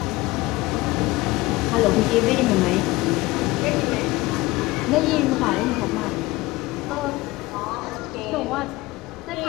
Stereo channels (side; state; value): right; quieter; 20.1 dB